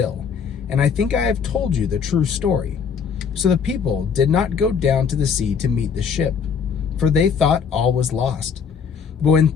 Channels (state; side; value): quieter; right; 6.5 dB